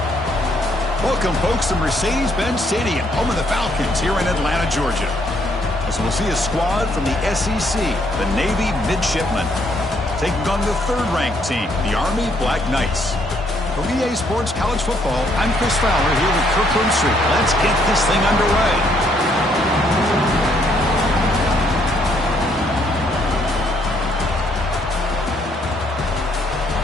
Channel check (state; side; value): normal; both; correlation 0.69